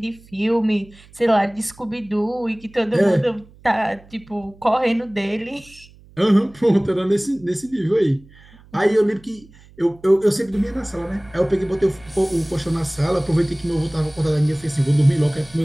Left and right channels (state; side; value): noise; right; hum, 25 dB below the sound